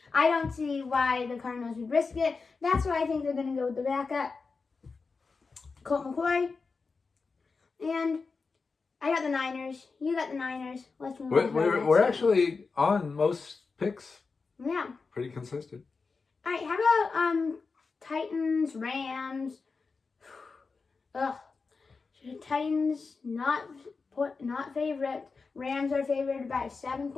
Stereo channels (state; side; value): quieter; right; 4.5 dB